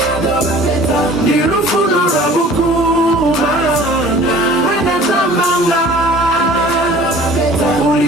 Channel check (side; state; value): both; normal; correlation 0.47